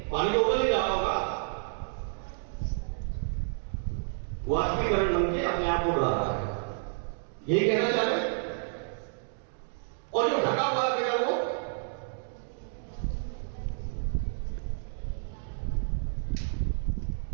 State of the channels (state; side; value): silent; left; digital silence